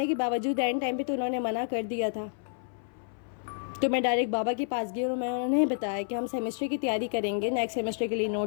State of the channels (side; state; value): right; silent; 56 dB below the other